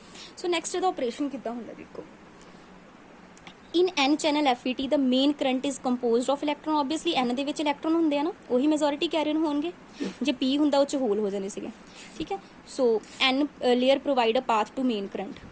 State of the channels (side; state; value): both; identical; correlation 1.00